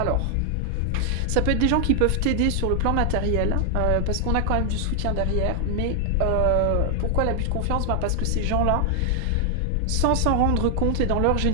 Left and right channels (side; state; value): both; different; correlation 0.00